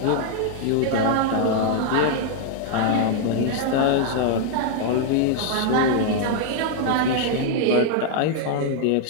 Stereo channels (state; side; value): different; both; correlation 0.00